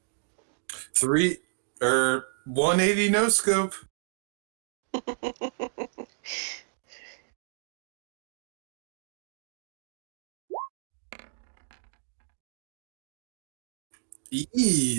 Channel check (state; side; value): silent; left; digital silence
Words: 180 no scope.